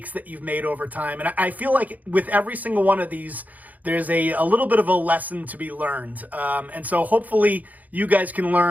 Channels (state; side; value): late; left; 0.079 ms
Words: that you've made over time. And I feel like with every single one of these, there's a little bit of a lesson to be learned. And so hopefully you guys can